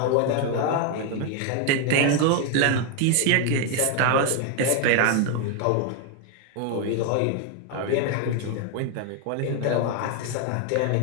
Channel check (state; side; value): different; both; correlation 0.01